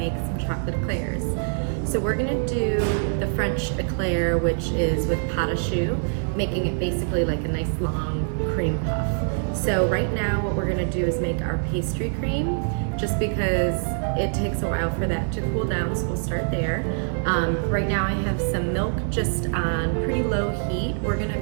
some chocolate eclairs. So we're going to do the French eclair, which is with Pate Choux, making it basically like a nice long cream puff. So right now what we're going to do is make our pastry cream, just because it takes a while for that to cool down, so we'll start there. Right now I have some milk just on pretty low heat. We're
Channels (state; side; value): silent; left; digital silence